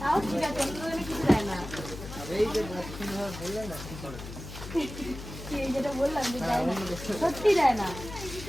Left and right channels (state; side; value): noise; left; hum, 11 dB below the sound